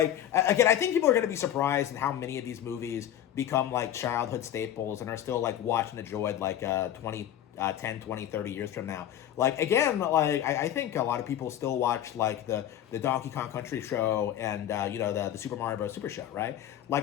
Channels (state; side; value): quieter; right; 11.2 dB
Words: again, I think people are going to be surprised at how many of these movies become, like, childhood staples and are still, like, watched and enjoyed, like, 10, 20, 30 years from now. Like, again, like, I think a lot of people still watch, like, the Donkey Kong Country show and, you know, the Super Mario Bros. Super show, right?